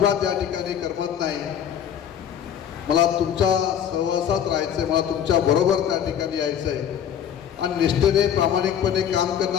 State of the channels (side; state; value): right; quieter; 9.1 dB